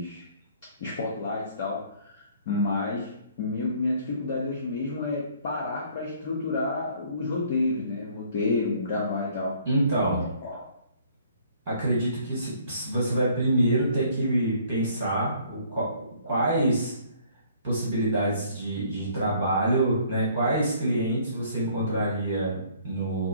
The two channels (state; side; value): inverted; both; correlation -0.59